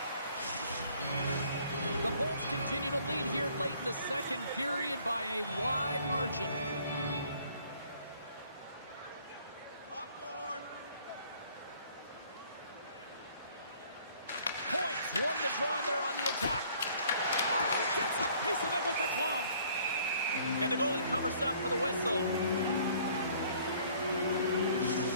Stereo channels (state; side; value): inverted; both; correlation -0.58